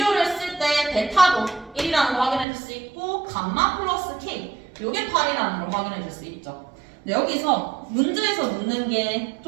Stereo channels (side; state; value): left; drops out; at 2.5 s